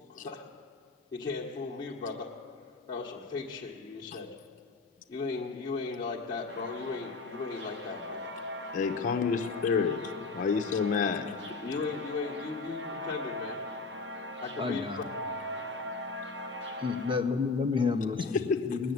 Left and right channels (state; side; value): quieter; right; 4.2 dB